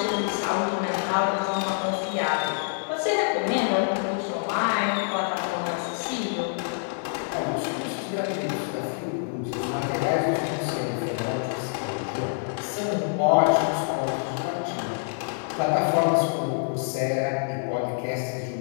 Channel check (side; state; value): right; silent; digital silence